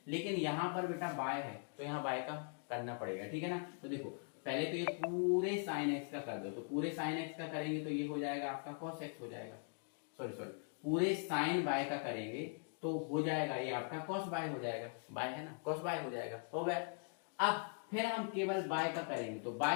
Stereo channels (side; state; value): right; silent; 50 dB below the other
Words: लेकिन यहाँ पर बेटा y है तो यहाँ y का करना पड़ेगा, ठीक है ना। तो देखो पहले तो ये पूरे साइन x का कर दो, तो पूरे साइन x का करेंगे तो ये हो जाएगा आपका cos x हो जाएगा, सॉरी पूरे साइन y का करेंगे तो हो जाएगा ये आपका cos y हो जाएगा, y है ना, cos y हो जाएगा, हो गया। अब फिर हम केवल y का करेंगे, तो y